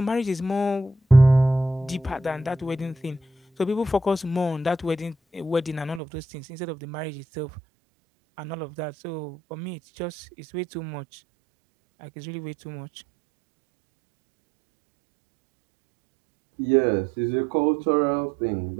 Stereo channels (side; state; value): left; drops out; at 6.0 s